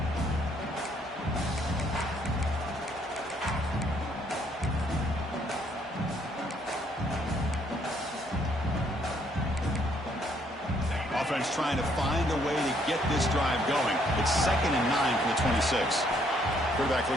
Offense trying to find a way to get this drive going. It's 2nd and 9 from the 26. Quarterback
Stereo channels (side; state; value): both; normal; correlation 0.68